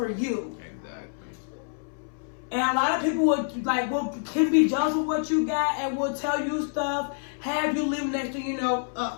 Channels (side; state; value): right; silent; 60 dB below the other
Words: you? Exactly. And a lot of people can be jealous of what you got and will tell you stuff, have you leave, next thing you know,